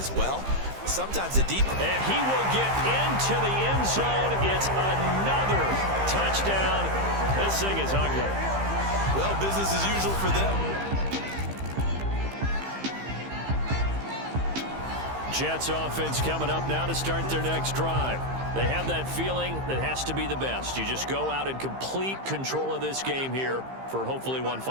well. Sometimes the deep... And he will get into the end zone. It's another touchdown. This thing is ugly. Well, business as usual for them. Jets offense coming up now to start their next drive. They have that feeling that has to be the best. You just go out and complete control of this game here for hopefully one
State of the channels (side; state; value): left; late; 15 ms